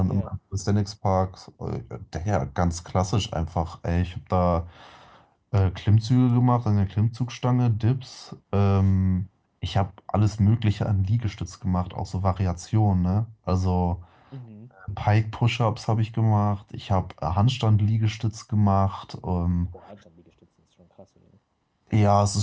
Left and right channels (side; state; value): both; identical; correlation 1.00